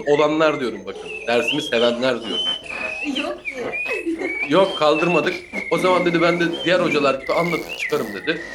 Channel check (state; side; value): identical; both; correlation 1.00